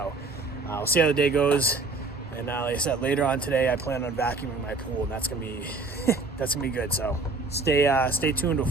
we'll see how the day goes. And like I said, later on today, I plan on vacuuming my pool, and that's gonna be that's gonna be good. So stay tuned. Look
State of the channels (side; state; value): left; quieter; 3.6 dB